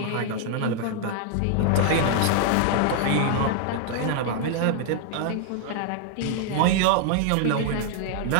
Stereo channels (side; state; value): both; different; correlation 0.00